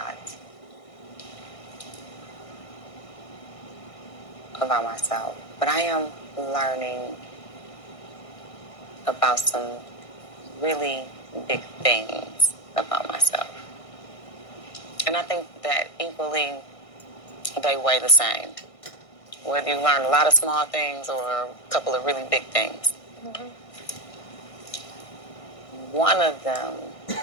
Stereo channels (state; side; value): late; right; 1.6 ms